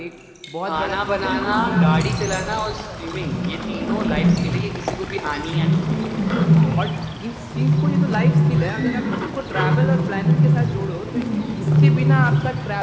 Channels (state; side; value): identical; both; correlation 1.00